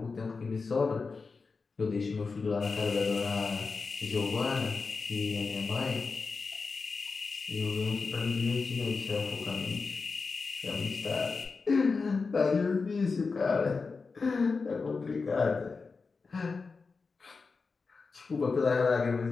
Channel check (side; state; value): right; quieter; 4.5 dB